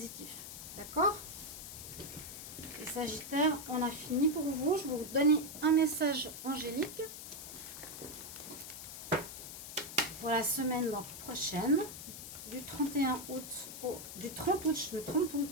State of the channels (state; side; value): noise; left; hiss, 10 dB below the sound